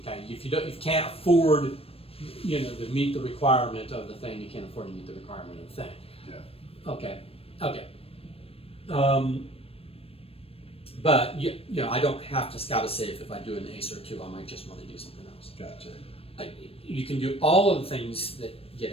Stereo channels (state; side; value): late; right; 0.28 ms